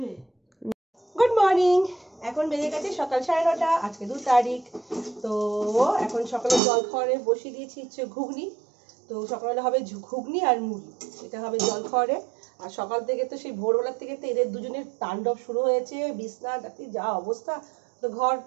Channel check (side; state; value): left; drops out; at 6.6 s